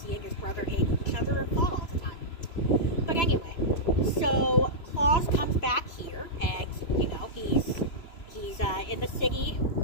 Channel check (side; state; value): right; late; 2.9 ms